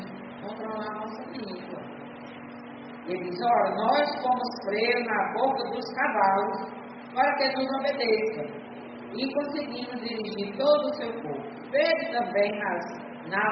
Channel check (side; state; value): both; identical; correlation 1.00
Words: controlar a nossa língua. Ele diz: ora, nós fomos freios na boca dos cavalos para que nos obedeçam, e conseguimos dirigir todo o seu povo. Vede também as